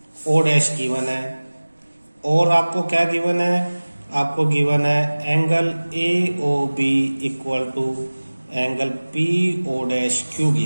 O dash given है, और आपको क्या गिवन है, आपको गिवन है angle A O B equal to angle P O dash Q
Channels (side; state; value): both; inverted; correlation -1.00